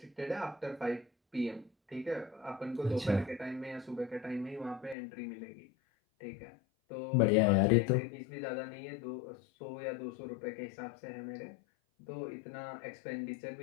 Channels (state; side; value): drops out; right; at 5.0 s